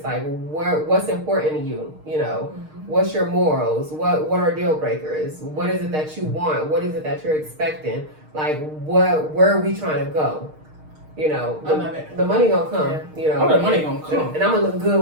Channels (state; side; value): late; left; 6.5 ms